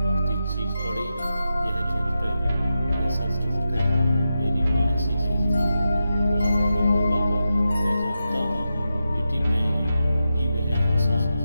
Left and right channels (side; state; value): both; inverted; correlation -0.88